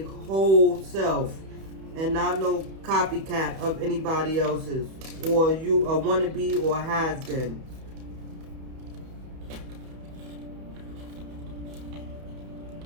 whole self and not no copycat of anybody else's, or you a wannabe or has been.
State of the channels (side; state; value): left; late; 31 ms